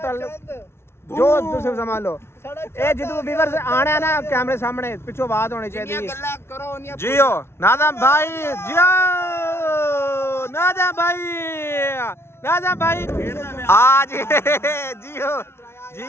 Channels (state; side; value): late; right; 0.12 ms